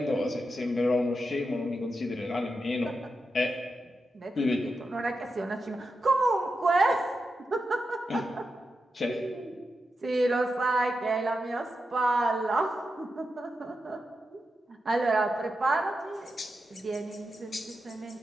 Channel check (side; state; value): both; normal; correlation 0.88